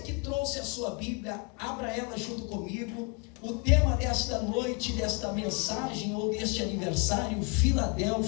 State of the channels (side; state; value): right; quieter; 32.0 dB